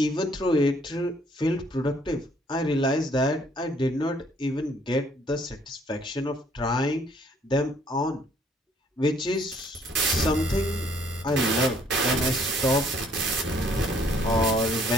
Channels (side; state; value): both; normal; correlation 0.63